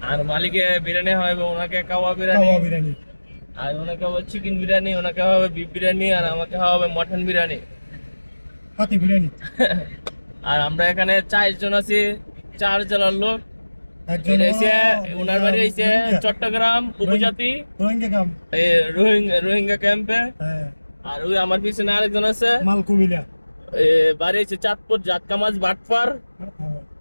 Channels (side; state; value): both; inverted; correlation -1.00